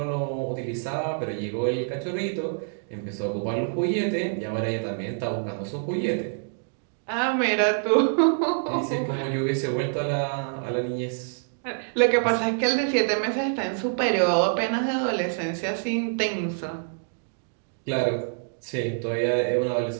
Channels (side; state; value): left; silent; digital silence